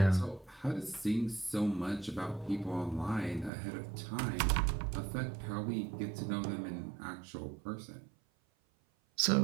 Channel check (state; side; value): drops out; left; at 3.5 s